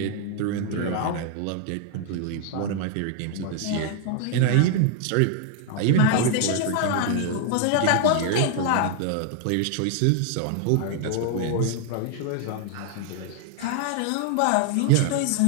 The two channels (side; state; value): both; different; correlation 0.00